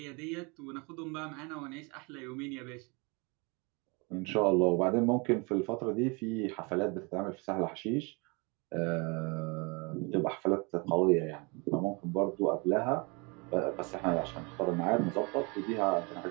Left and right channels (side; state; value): left; quieter; 29.9 dB